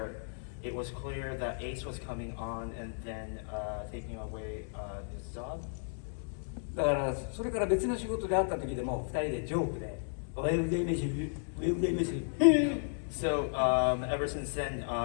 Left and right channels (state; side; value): silent; right; digital silence